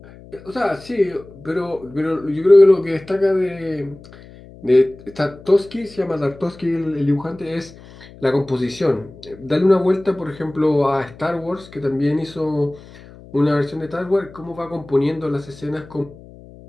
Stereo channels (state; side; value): noise; left; hum, 20 dB below the sound